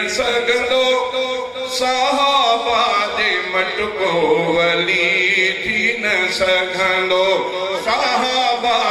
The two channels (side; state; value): both; identical; correlation 1.00